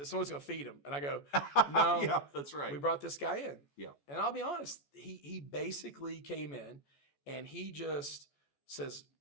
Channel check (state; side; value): late; right; 14 ms